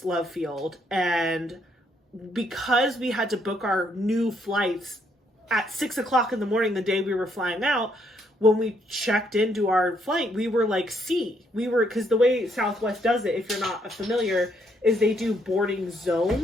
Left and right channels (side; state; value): both; normal; correlation 0.72